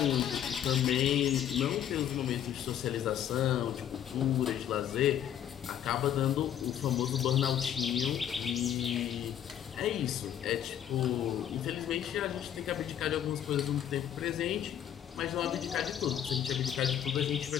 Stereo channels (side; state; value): right; quieter; 10.1 dB